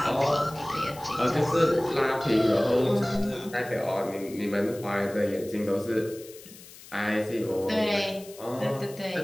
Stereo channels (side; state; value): left; noise; hiss, 19 dB below the sound